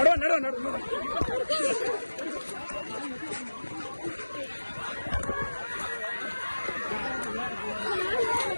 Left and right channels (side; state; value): both; inverted; correlation -1.00